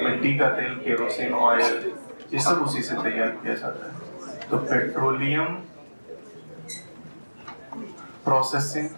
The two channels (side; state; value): both; inverted; correlation -1.00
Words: मिट्टी का तेल, केरोसिन ऑयल, ये सब उसी से तैयार किया जाता है। तो पेट्रोलियम प्रोसेसिंग,